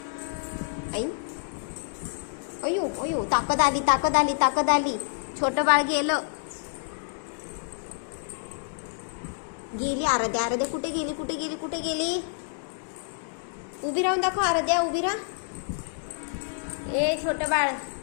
आई, अयो अयो, ताकद आली, ताकद आली, ताकद आली. छोटं बाळ गेलं. गेली आराध्या, आराध्या कुठे गेली, कुठे गेली, कुठे गेली. उभी राहून दाखव आराध्या, उभी राहा. ए छोटं बाळ,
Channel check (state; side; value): silent; right; digital silence